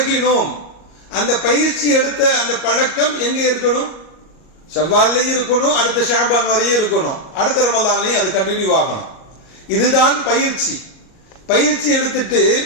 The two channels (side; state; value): right; late; 38 ms